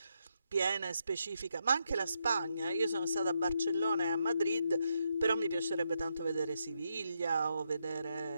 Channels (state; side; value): inverted; both; correlation -0.81